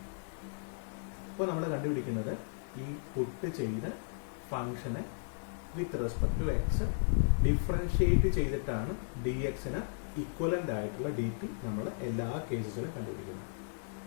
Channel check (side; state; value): right; silent; digital silence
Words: അപ്പോൾ നമ്മൾ കണ്ടുപിടിക്കുന്നത് ഈ പുട്ട് ചെയ്ത ഫംഗ്ഷനെ with respect to X differentiate ചെയ്തിട്ടാണ് ഡി എക്സിന് ഇക്വലന്റ് ആയിട്ടുള്ള ഡി പി നമ്മൾ എല്ലാ കേസസിലും കണ്ടുപിടിക്കുന്നത്.